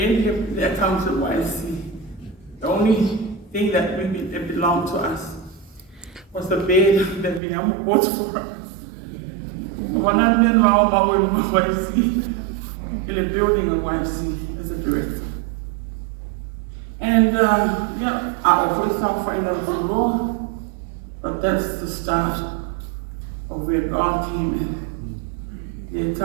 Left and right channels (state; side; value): drops out; left; at 7.4 s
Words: the accounts of YC. The only thing that belonged to us was the bed that Viliamu bought for us. When I met Mafo'e in YC, in a building in YC as a director. And I always found financial law, but that's the start of where God came in. The